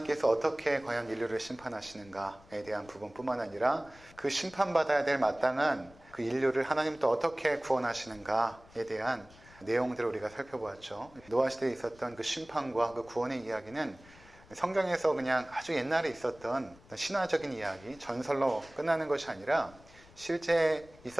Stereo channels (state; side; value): noise; left; rumble, 24 dB below the sound